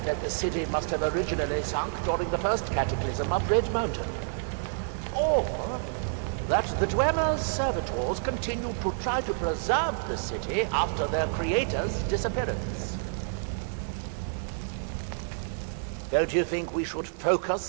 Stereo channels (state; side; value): silent; left; digital silence